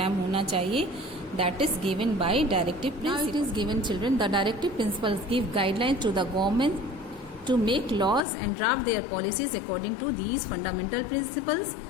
होना चाहिए, that is given by directive principles. Now it is given, children, the directive principles give guidelines to the government to make laws and draft their policies according to these fundamental principles,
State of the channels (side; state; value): right; drops out; at 8.2 s